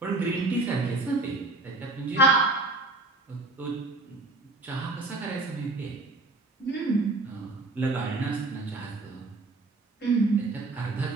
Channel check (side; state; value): left; quieter; 3.1 dB